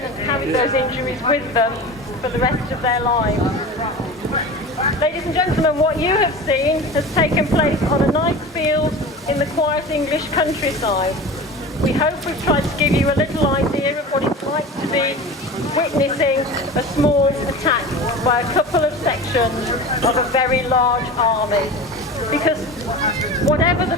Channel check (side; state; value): both; normal; correlation 0.33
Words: and carried those injuries with them for the rest of their lives. Ladies and gentlemen, what you have seen has taken place on a nice field in the quiet English countryside. We hope we've tried to give you a little idea of what it's like to be witnessing a small attack by a couple of sections of a very large army. Because whatever the